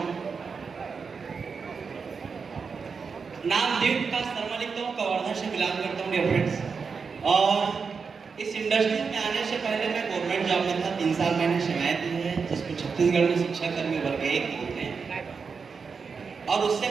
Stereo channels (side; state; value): left; quieter; 5.4 dB